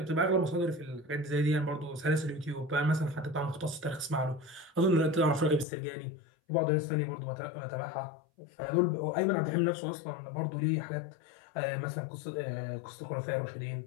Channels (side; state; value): right; drops out; at 5.7 s